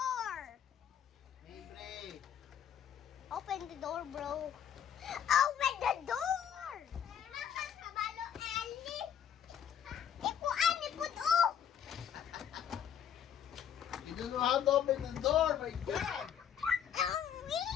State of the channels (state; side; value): quieter; right; 8.9 dB